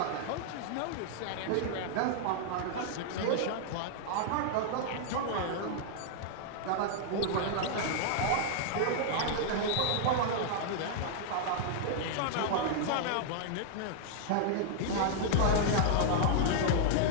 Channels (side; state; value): both; different; correlation -0.01